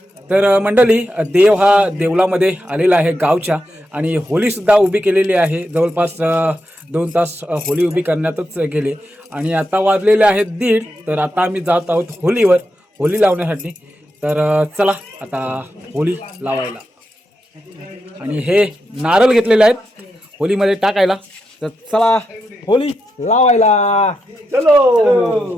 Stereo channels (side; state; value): both; normal; correlation 0.86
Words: तर मंडळी देव हा देवलामध्ये आलेला आहे गावच्या आणि होली सुद्धा उभी केलेली आहे। जवळपास 2 तास होली उभी करण्यातच गेले आणि आता वाजलेले आहेत 1:30। तर आता आम्ही जात आहोत होलीवर होली लावण्यासाठी। तर चला आता होली लावायला। आणि हे नारळ घेतलेले आहेत होलीमध्ये टाकायला। तर चला होली लावायला।